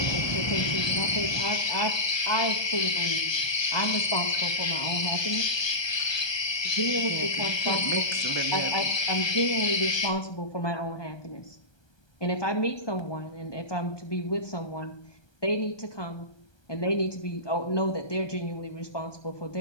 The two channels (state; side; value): late; right; 1.2 ms